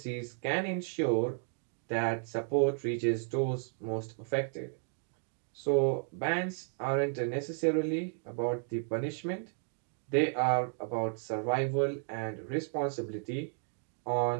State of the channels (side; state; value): left; silent; 55 dB below the other